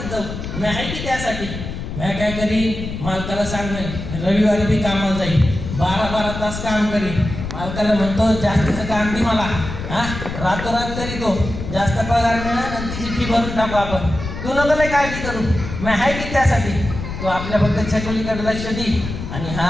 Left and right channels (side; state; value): left; noise; rumble, 7 dB below the sound